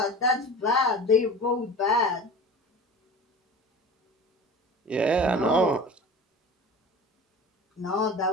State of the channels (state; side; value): normal; both; correlation 0.36